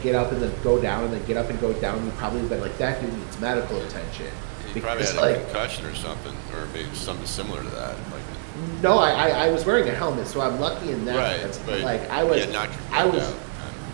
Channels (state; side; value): silent; left; 58 dB below the other